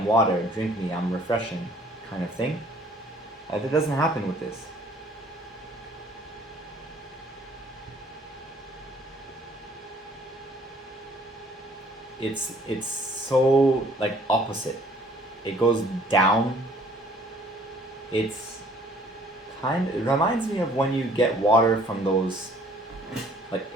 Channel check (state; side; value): normal; both; correlation 0.58